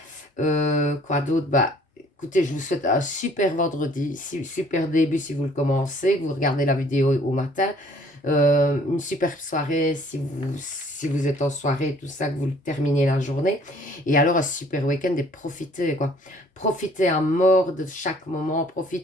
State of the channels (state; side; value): normal; both; correlation 0.57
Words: Quoi d'autre? Bah écoutez, je vous souhaite un super vendredi, super début si vous le commencez, que vous regardez la vidéo au matin. Une super soirée si vous êtes en soirée, tout ça, que vous terminez la journée. Et alors un super week-end et profitez, quoi. Profitez à mort de chaque moment,